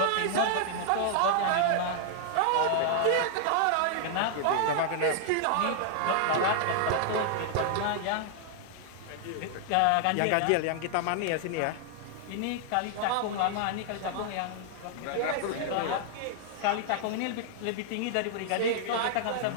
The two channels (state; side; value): different; both; correlation 0.00